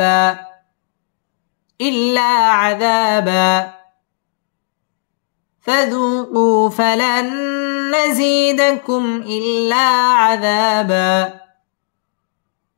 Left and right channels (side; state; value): right; silent; digital silence